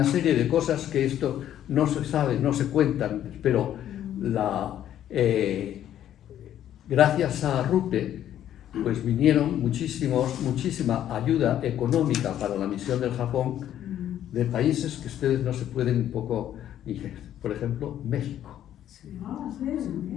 serie de cosas que esto no se sabe, no se cuentan, pero gracias a Arrupe pues vinieron muchísima ayuda económica para la misión del Japón de países que ustedes no se pueden un poco, por ejemplo, México.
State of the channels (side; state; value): right; quieter; 11.2 dB